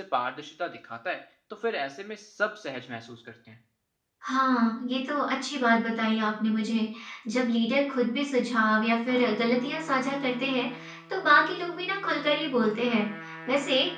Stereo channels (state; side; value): identical; both; correlation 1.00